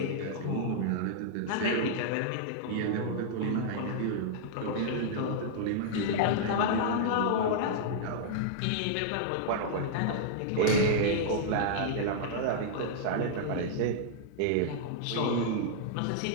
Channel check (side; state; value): both; different; correlation -0.01